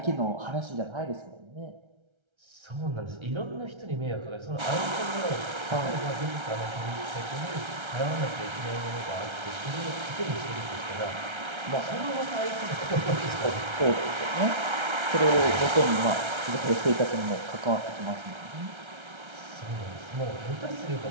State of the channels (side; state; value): left; late; 1.3 ms